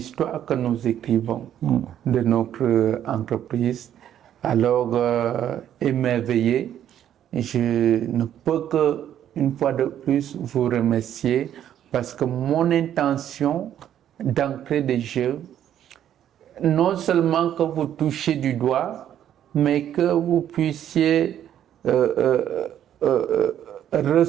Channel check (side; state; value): left; quieter; 10.6 dB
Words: que nous écrivons de notre entreprise. Alors, émerveillé, je ne peux que, une fois de plus, vous remercier parce que mon intention d'entrer des jeux, non seulement que vous touchiez du doigt, mais que vous puissiez